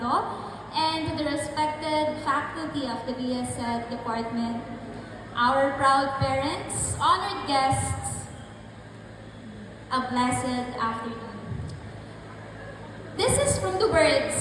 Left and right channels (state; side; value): identical; both; correlation 1.00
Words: and to the respected faculty of the BSED department, our proud parents, honored guests, a blessed afternoon. This is from the